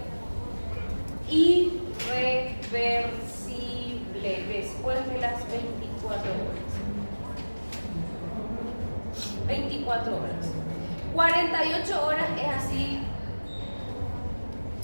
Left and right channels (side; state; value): both; inverted; correlation -1.00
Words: Irreversible después de las 24 horas. 24 horas. 48 horas es así.